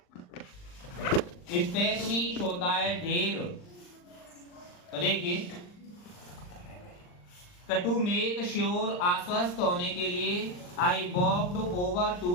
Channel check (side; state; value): right; late; 39 ms